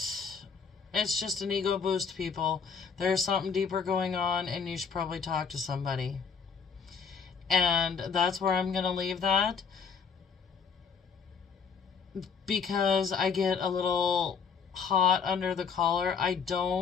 It's just an ego boost, people. There's something deeper going on and you should probably talk to somebody. And that's where I'm going to leave that. Because I get a little hot under the collar. I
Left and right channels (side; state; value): right; quieter; 6.0 dB